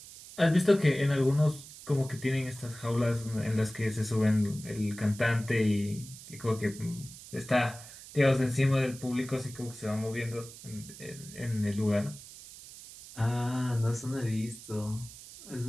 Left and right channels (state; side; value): noise; right; hiss, 16 dB below the sound